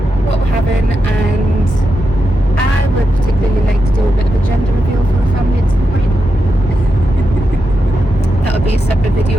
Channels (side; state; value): both; normal; correlation 0.87